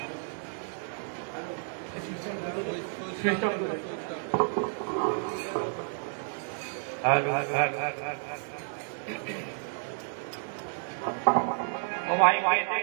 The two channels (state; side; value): silent; left; 57 dB below the other